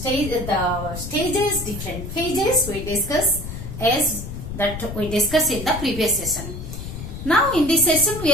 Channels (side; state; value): left; noise; rumble, 8 dB below the sound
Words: different phases we discuss as that we discussed in the previous session. Now in this session we